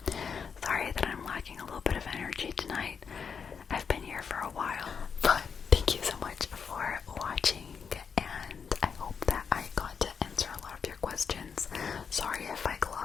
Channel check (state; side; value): quieter; right; 6.3 dB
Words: Sorry that I'm lacking a little bit of energy tonight. I've been here for a while, but thank you so much for watching, and I hope that I got to answer a lot of your questions. Sorry if I